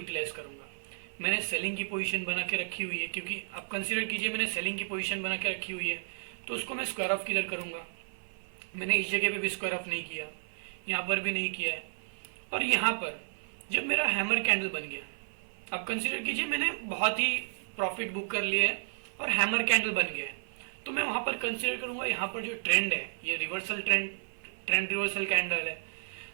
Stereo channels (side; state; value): left; silent; 55 dB below the other